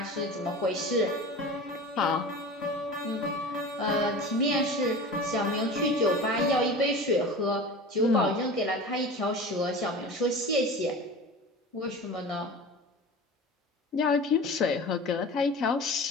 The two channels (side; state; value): both; normal; correlation 0.34